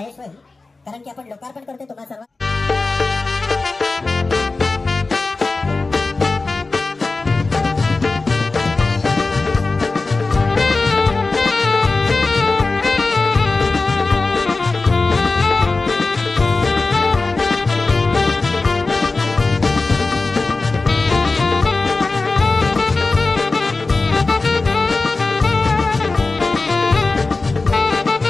होईल कारण की आपण लोकार्पण करतोय तुम्हा सर्व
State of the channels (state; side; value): quieter; right; 3.7 dB